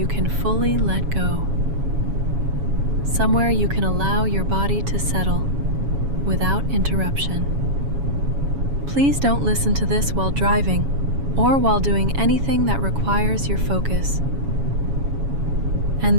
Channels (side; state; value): left; late; 7.2 ms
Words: can fully let go. Somewhere you can allow your body to settle without interruption. Please don't listen to this while driving or while doing anything that requires your focus. And